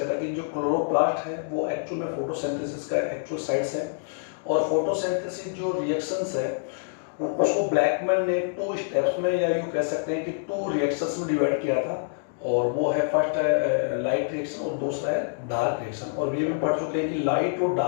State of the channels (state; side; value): silent; right; digital silence